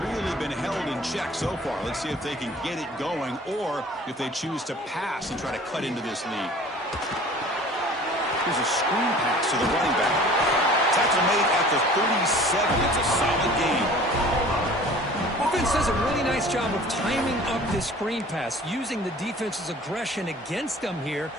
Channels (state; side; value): normal; both; correlation 0.47